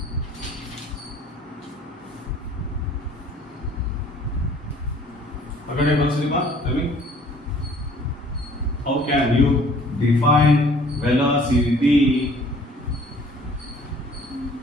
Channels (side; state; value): both; normal; correlation 0.55